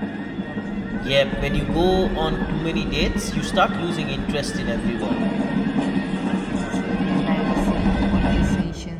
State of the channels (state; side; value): identical; both; correlation 1.00